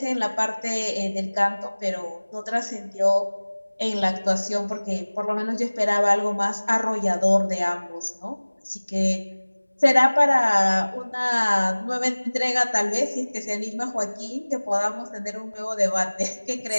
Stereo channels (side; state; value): both; inverted; correlation -1.00